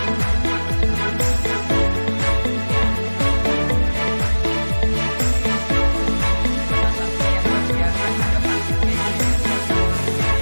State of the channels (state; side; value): inverted; both; correlation -1.00